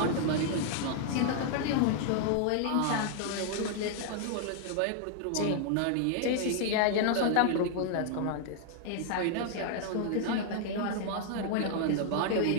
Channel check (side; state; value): both; different; correlation 0.00